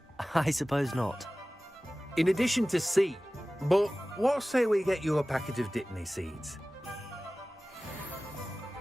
I suppose not. In addition to seed, but what say we get you a packet of dittany seeds?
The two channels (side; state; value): both; normal; correlation 0.97